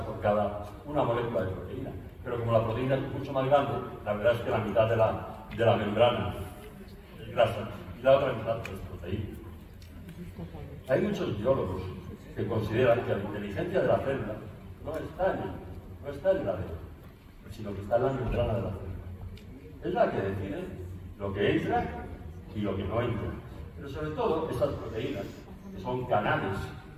por cada una molécula de proteína, pero como la proteína es mucho más grande, la verdad es que la mitad de la membrana es grasa y la otra mitad es proteína. Hay muchos biólogos que consideran que la inteligencia de la célula no está en el ADN, sino que está en la membrana de la célula. Es la que decide lo que entra y lo que no entra. Pero sobre todo estas proteínas, que son canales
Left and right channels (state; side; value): identical; both; correlation 1.00